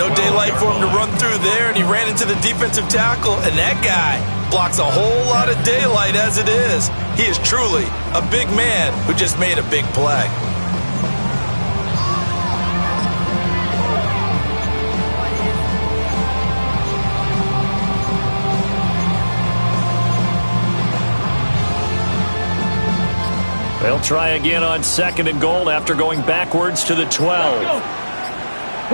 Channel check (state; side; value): inverted; both; correlation -1.00